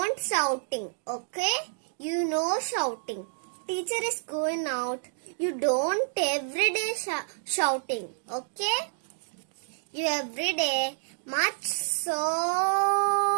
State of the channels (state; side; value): silent; left; digital silence